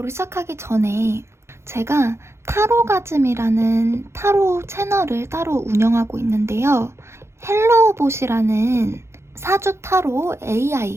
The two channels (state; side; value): late; left; 0.13 ms